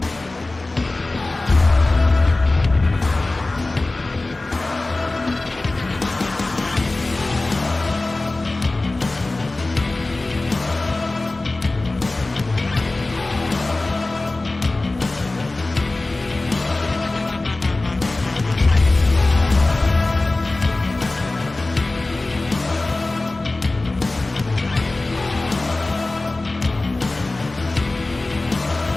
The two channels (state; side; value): quieter; right; 3.0 dB